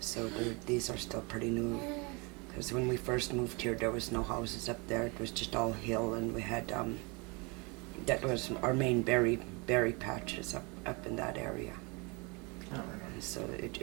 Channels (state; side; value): quieter; left; 29.7 dB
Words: these are still pretty new. Because when we first moved here, there was no houses up there. It was just all hill, and we had that was our main berry patches up in that area. Oh, So